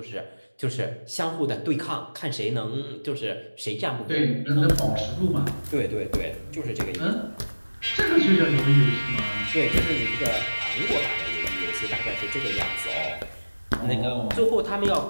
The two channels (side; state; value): both; inverted; correlation -1.00